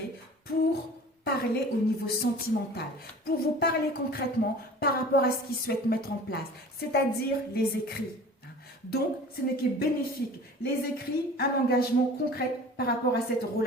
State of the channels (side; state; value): both; normal; correlation 0.42